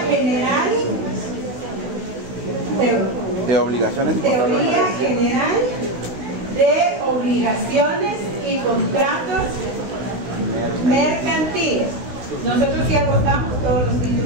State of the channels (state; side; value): late; left; 16 ms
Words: general De obligaciones y contratos. teoría general de obligaciones y contratos mercantiles. Nosotros sí agotamos todos los